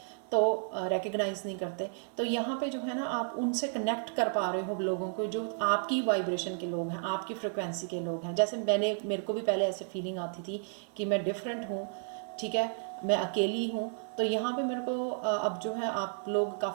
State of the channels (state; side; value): silent; left; 56 dB below the other